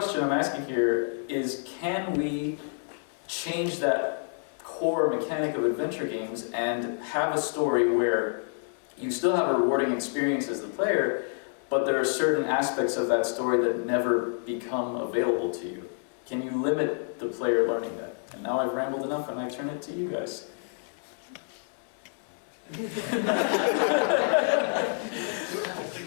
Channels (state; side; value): silent; right; 58 dB below the other